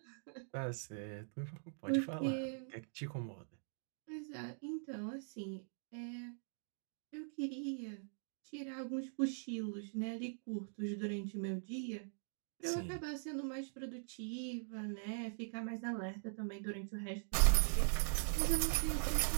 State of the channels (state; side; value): silent; left; digital silence